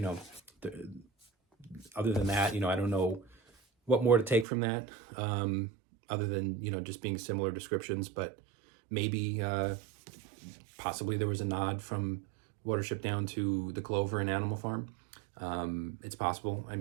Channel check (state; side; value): drops out; left; at 4.5 s